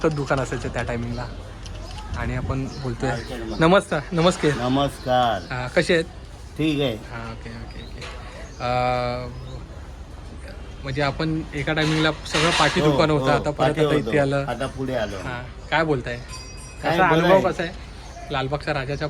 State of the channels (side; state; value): both; identical; correlation 1.00